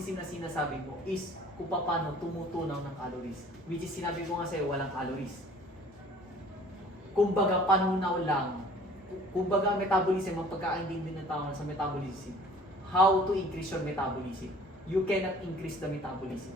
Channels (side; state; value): both; normal; correlation 0.51